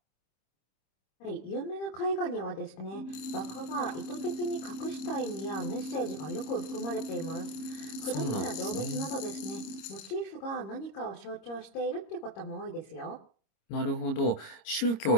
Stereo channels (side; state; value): right; late; 26 ms